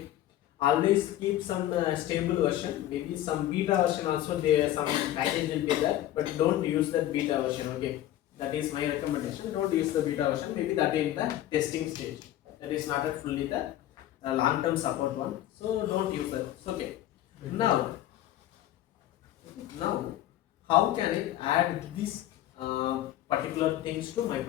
always keep some stable version. Maybe some beta version also there. Some package will be there, but don't use that beta version. Okay, that is my recommendation. Don't use the beta version. Maybe that in the testing stage. That is not a fully the long-term support one. So don't use that. Okay. Now, how can I add these particular things to my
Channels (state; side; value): quieter; right; 13.3 dB